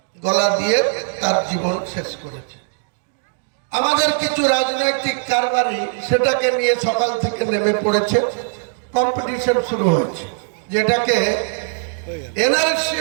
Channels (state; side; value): silent; left; digital silence